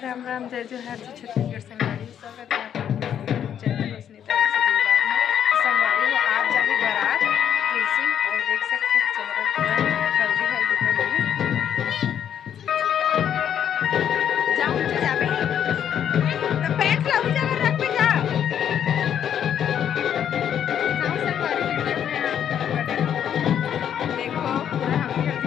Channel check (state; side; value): quieter; right; 9.3 dB